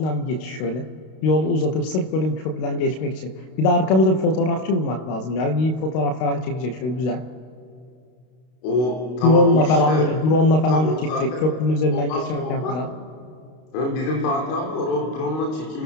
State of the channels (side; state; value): right; late; 32 ms